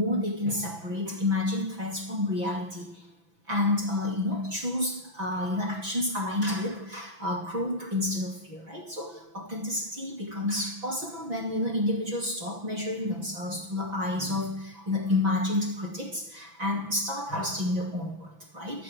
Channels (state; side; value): late; left; 6.0 ms